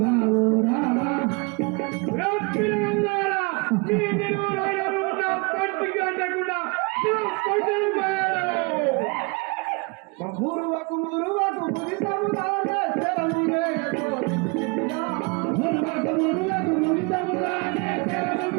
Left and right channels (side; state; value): left; quieter; 30.4 dB